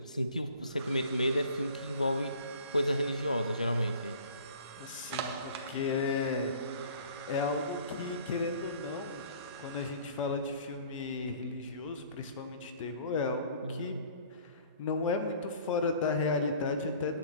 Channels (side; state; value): both; inverted; correlation -0.49